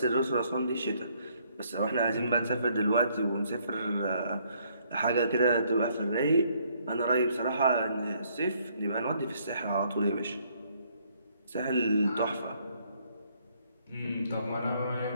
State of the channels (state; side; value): inverted; both; correlation -0.67